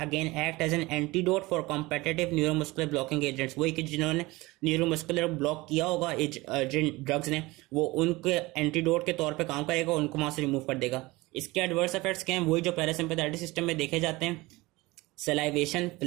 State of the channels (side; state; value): left; quieter; 21.5 dB